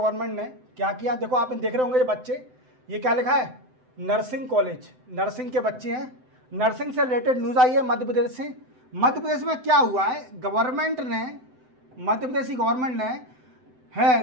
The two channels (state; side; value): late; left; 7.8 ms